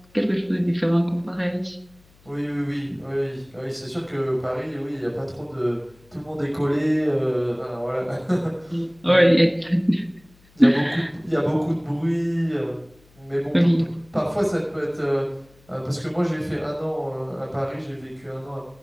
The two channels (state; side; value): noise; left; hum, 29 dB below the sound